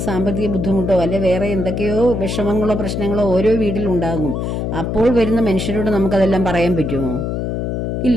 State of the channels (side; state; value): left; noise; hum, 2 dB below the sound